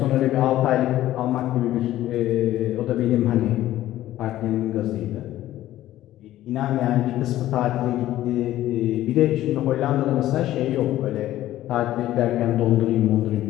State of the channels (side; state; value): right; quieter; 14.1 dB